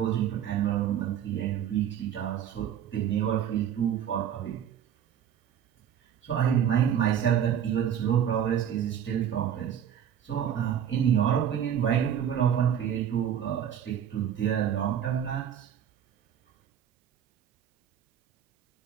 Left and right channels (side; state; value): left; quieter; 9.3 dB